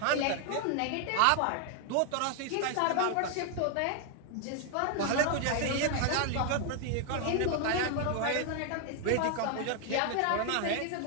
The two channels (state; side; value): different; both; correlation 0.00